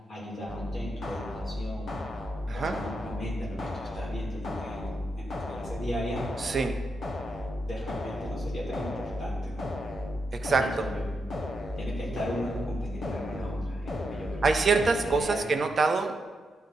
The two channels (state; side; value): normal; both; correlation 0.84